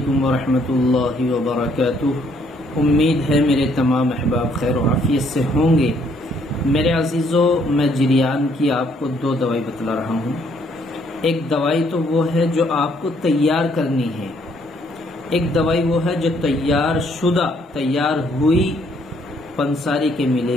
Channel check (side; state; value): both; normal; correlation 0.67